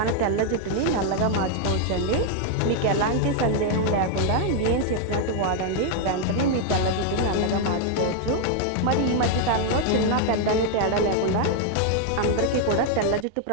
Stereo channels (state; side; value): different; both; correlation 0.00